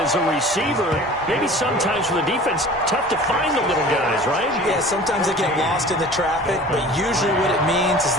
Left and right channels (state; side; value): normal; both; correlation 0.43